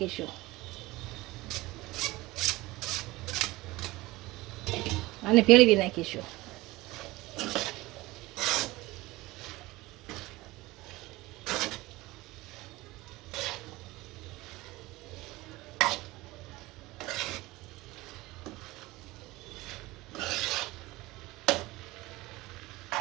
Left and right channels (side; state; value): left; quieter; 19.9 dB